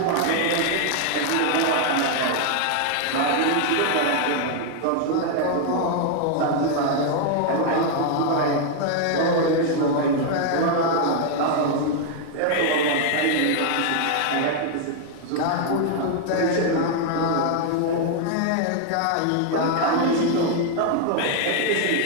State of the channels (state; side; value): different; both; correlation 0.00